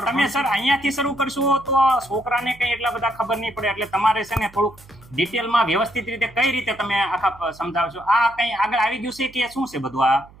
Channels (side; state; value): right; noise; hum, 24 dB below the sound